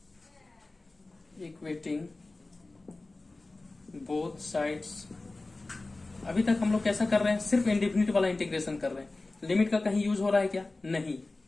equating both sides. अभी तक हम लोग कैसा कर रहे हैं, सिर्फ इंडेफिनिट वाला इंटीग्रेशन कर रहे हैं, लिमिट का कहीं यूज हो रहा है क्या, नहीं,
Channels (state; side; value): quieter; right; 3.2 dB